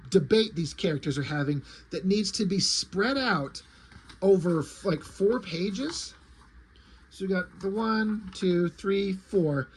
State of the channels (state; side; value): identical; both; correlation 1.00